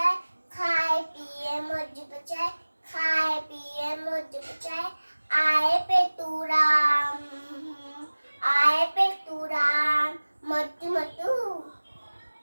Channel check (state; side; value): inverted; both; correlation -1.00